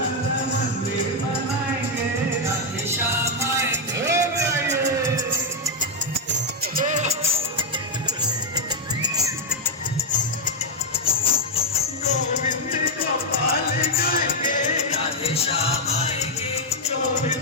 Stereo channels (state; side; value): normal; both; correlation 0.01